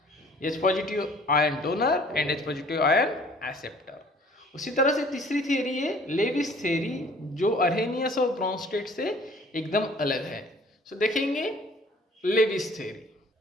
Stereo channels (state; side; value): normal; both; correlation 0.54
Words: H positive ion donor and H positive ion acceptor. उसी तरह से तीसरी थियरी है लेविस थियरी, जो अरहेनियस और ब्रॉन्स्टेड से एकदम अलग है। सो देखेंगे लेविस थियरी।